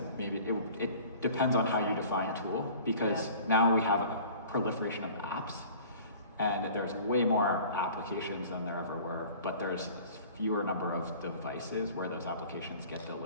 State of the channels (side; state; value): both; inverted; correlation -0.46